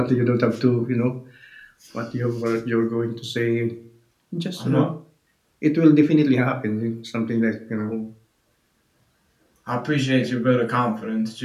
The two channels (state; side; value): identical; both; correlation 1.00